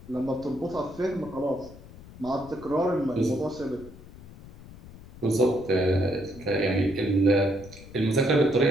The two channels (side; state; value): left; noise; rumble, 18 dB below the sound